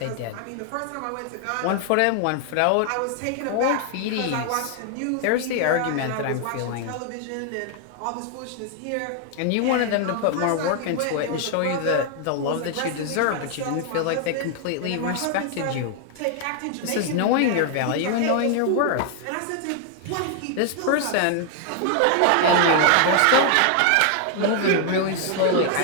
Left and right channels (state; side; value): different; both; correlation 0.00